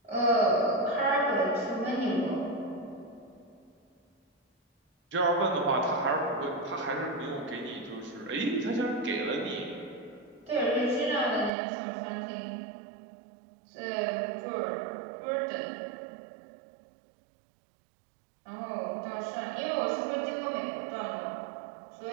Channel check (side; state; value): left; drops out; at 11.5 s